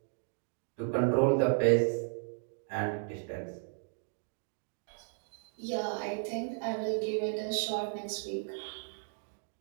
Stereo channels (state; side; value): silent; left; digital silence